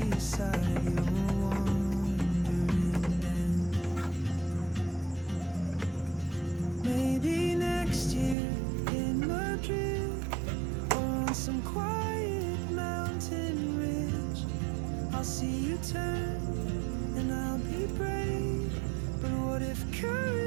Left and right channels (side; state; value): left; drops out; at 8.3 s